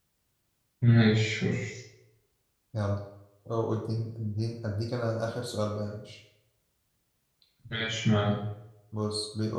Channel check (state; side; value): identical; both; correlation 1.00